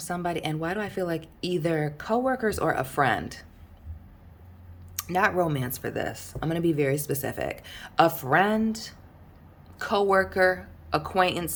And why do I feel like either coworkers or a friend? Not romance for this. I'm going to be very specific. A friend, coworker, acquaintance,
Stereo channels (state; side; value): identical; both; correlation 1.00